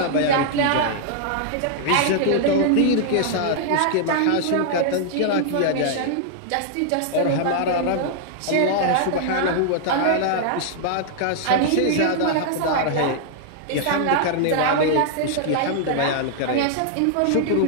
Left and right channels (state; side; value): different; both; correlation -0.01